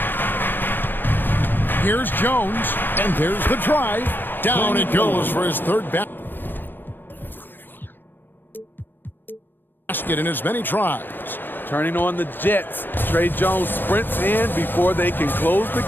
Here's Jones, and there's the drive. Down it goes for his third basket in as many tries. Turning on the Jets. Trey Jones sprints in before they can close the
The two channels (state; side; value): late; right; 0.094 ms